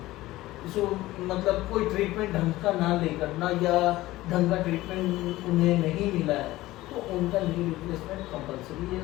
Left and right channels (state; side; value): quieter; right; 17.3 dB